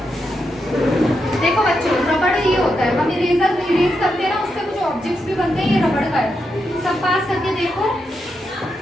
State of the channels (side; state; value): both; normal; correlation 0.84